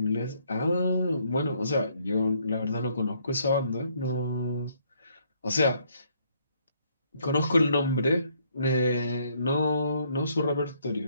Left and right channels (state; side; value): inverted; both; correlation -0.68